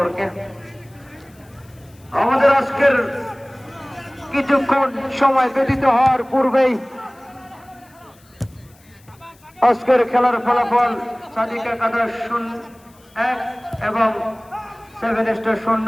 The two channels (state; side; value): noise; left; hiss, 30 dB below the sound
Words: আমাদের আজকের কিছুক্ষণ সময় ব্যতীত হওয়ার পূর্বেই আজকের খেলার ফলাফল সাদিক একাদশ 1 এবং 7 স্টার